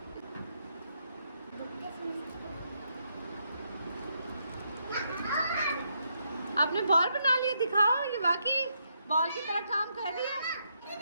आपने बॉल बना लिया, दिखाओ। ये वाकई बॉल की तरह काम कर रही है।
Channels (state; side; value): inverted; both; correlation -0.78